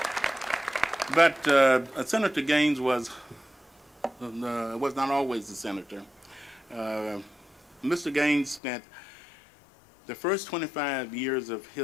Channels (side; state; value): right; drops out; at 8.6 s